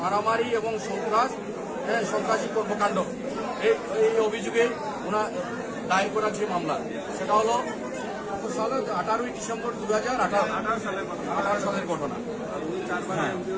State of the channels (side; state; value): both; identical; correlation 1.00